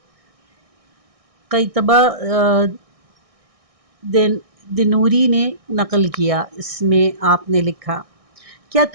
قیطبہ دنوری نے نقل کیا۔ اس میں آپ نے لکھا، کیا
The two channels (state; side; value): late; left; 1.6 ms